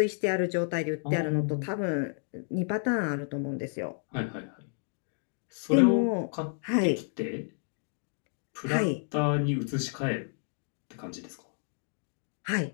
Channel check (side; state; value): right; silent; 57 dB below the other